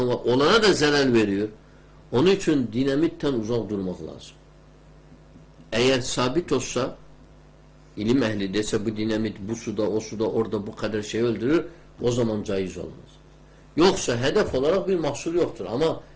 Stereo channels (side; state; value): both; identical; correlation 1.00